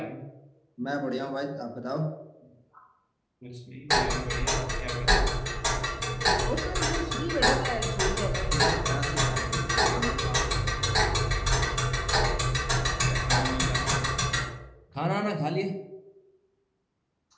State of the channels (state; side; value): identical; both; correlation 1.00